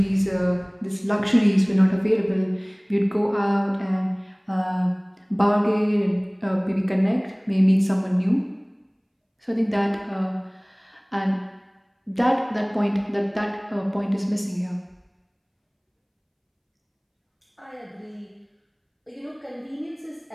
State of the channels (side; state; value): both; identical; correlation 1.00